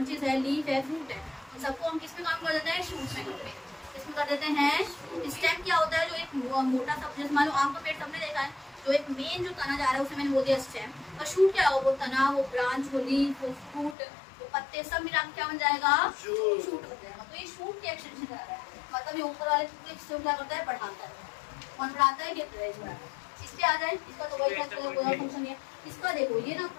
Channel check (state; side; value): drops out; right; at 14.0 s